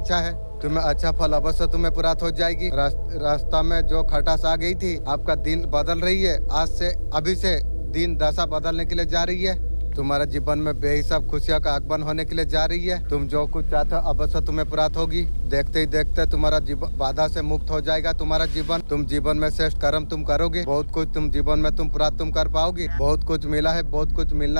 है। तुम्हें अच्छा फल अवश्य तुम्हें प्राप्त हो जाएगी। रास्ता में जो खटास आ गई थी, आपका दिन बदल रही है। आज से अभी से दिन दशा बदलने के लिए जा रही है। तुम्हारा जीवन में बेहिसाब खुशियों का आगमन होने के लिए जा रही है। तुम जो कुछ चाहते हो अवश्य तुम्हें प्राप्त होगी। देखते ही देखते तुम्हारा जीवन बाधा से मुक्त हो जाएगा। तुम्हारा जीवन, तुम जीवन में श्रेष्ठ कर्म तुम करोगे। बहुत कुछ तुम जीवन में तुम प्राप्त तुम कर पाओगे। बहुत कुछ मिला है, बहुत कुछ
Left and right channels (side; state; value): both; inverted; correlation -1.00